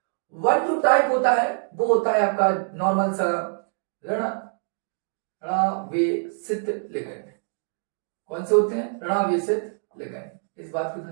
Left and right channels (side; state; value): left; silent; 62 dB below the other